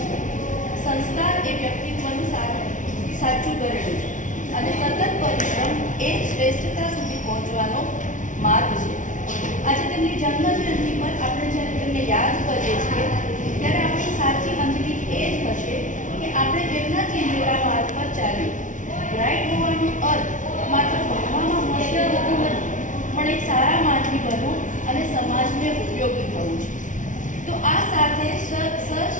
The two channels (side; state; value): right; late; 0.37 ms